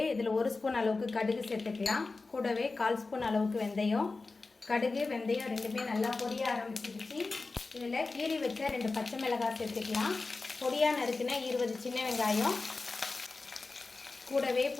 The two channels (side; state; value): right; quieter; 3.7 dB